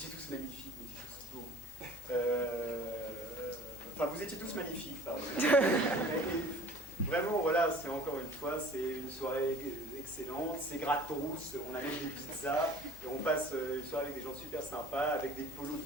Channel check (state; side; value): normal; both; correlation 0.49